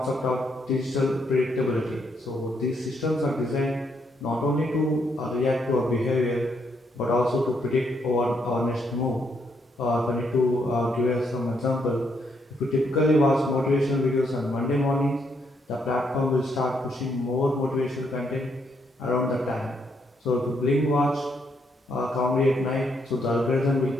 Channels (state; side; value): normal; both; correlation 0.75